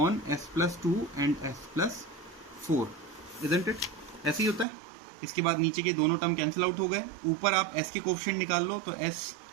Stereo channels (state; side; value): drops out; left; at 4.7 s